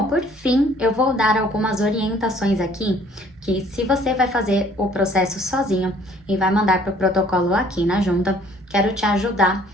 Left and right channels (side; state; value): both; normal; correlation 0.57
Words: por fim, eu vou dar algumas orientações aqui, que se você vai fazer o processo sozinho e vai mandar para o protocolo aqui na junta, quero te ajudar